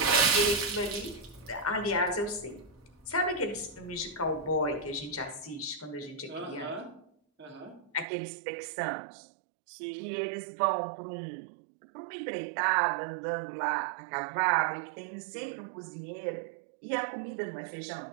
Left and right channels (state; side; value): drops out; left; at 8.1 s